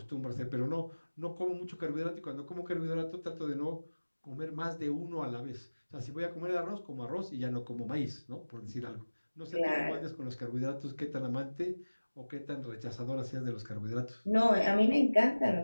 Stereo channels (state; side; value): inverted; both; correlation -1.00